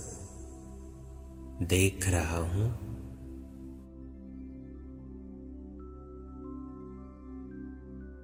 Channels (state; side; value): identical; both; correlation 1.00